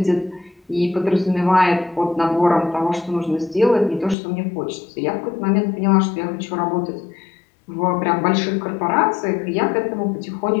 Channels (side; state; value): right; drops out; at 4.2 s